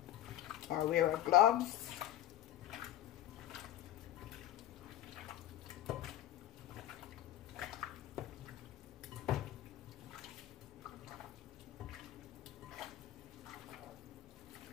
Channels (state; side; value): quieter; right; 12.8 dB